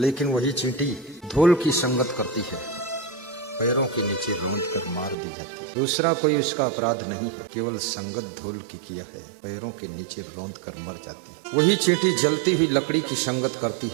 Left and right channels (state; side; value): drops out; left; at 5.2 s